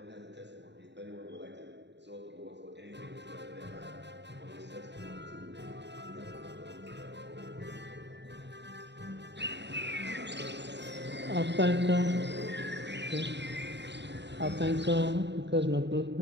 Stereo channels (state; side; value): late; left; 0.51 ms